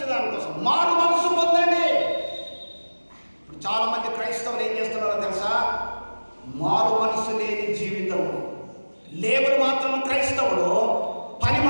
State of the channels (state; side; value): inverted; both; correlation -1.00